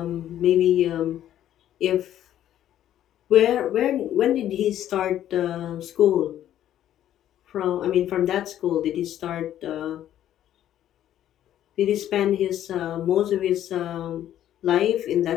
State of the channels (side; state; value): right; quieter; 11.6 dB